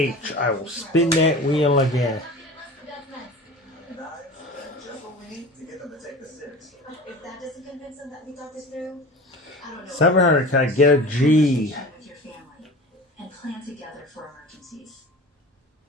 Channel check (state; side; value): normal; both; correlation 0.36